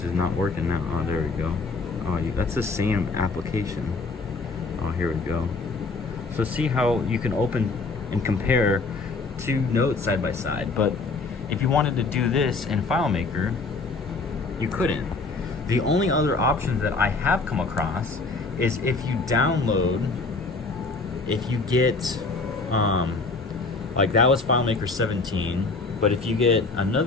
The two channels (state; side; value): quieter; right; 3.9 dB